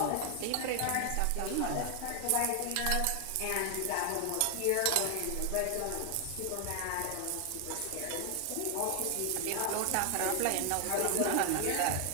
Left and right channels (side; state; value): both; different; correlation 0.00